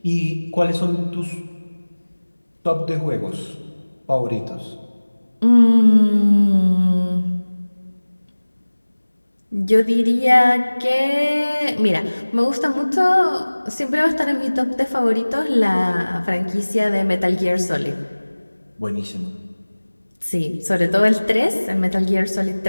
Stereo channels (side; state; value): both; inverted; correlation -1.00